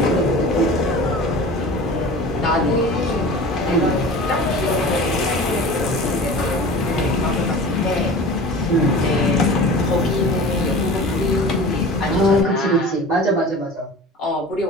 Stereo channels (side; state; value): both; normal; correlation 0.38